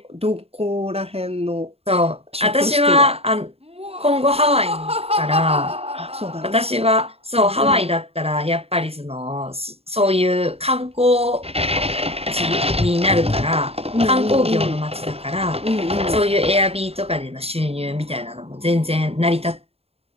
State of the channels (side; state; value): left; late; 0.29 ms